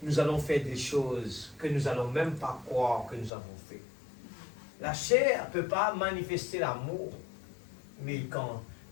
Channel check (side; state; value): right; drops out; at 3.3 s